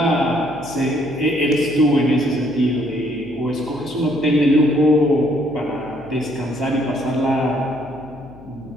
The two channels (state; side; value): noise; left; hum, 21 dB below the sound